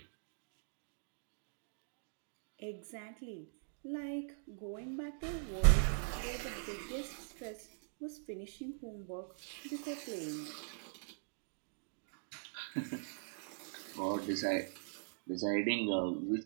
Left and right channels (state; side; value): silent; left; digital silence